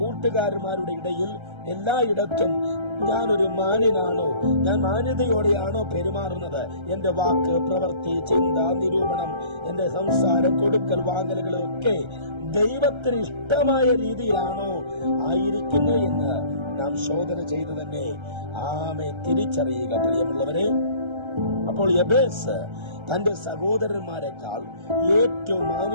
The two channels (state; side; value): late; left; 1.3 ms